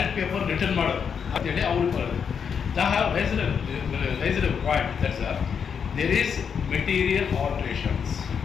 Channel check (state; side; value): quieter; right; 6.9 dB